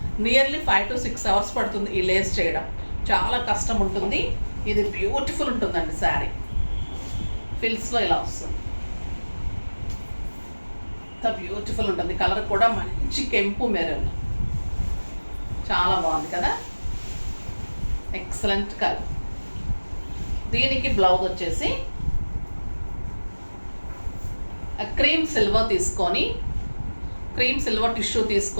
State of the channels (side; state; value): both; inverted; correlation -1.00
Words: నియర్లీ 5 to 6 hours పడుతుంది. ఈ లేస్ చేయడం చాలా కష్టం ఉంటుంది. ఇది బ్యూటిఫుల్ ఉంటుందండి శారీ. ఫిల్స్లో ఇలా వస్తుంది. ఇంత బ్యూటిఫుల్ ఉంటుంది. కలర్ కూడా మంచి కెంపు మెరూన్. చాలా బాగుంది కదా, ఎక్సలెంట్ కలర్. దీనికి బ్లౌజ్ వచ్చేసి క్రీమ్ సిల్వర్ తీసుకొని, క్రీమ్ సిల్వర్ టిష్యూ